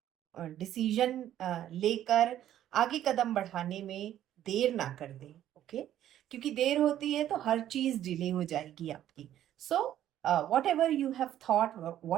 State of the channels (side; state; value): left; quieter; 11.8 dB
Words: डिसीजन लेकर आगे कदम बढ़ाने में देर ना कर दें, ओके? क्योंकि देर होती है तो हर चीज डिले हो जाएगी आपकी। So whatever you have thought,